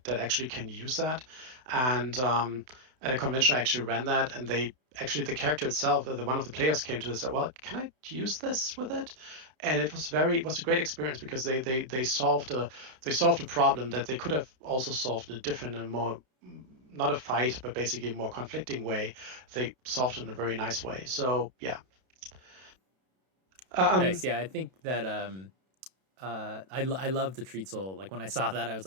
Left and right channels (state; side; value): late; left; 32 ms